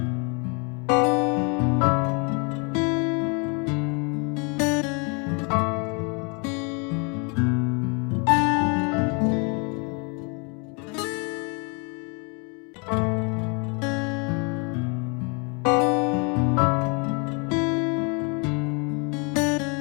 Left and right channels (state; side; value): quieter; right; 33.8 dB